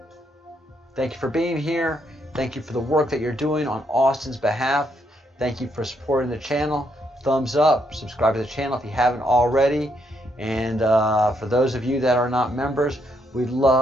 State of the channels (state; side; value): normal; both; correlation 0.75